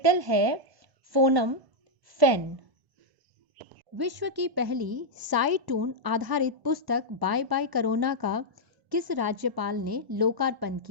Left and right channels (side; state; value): left; late; 1.1 ms